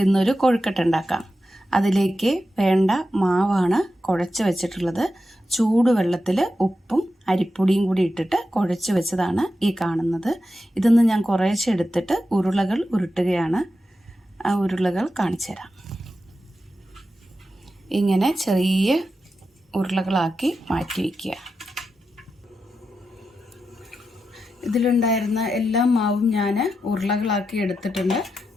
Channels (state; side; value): normal; both; correlation 0.89